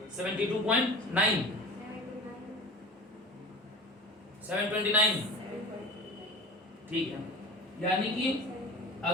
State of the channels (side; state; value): both; normal; correlation 0.36